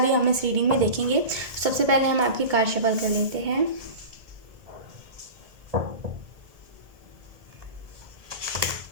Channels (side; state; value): left; late; 1.7 ms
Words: है हम इस रीडिंग में देखेंगे। सबसे पहले हम आपकी कार्ड शफल कर लेते हैं।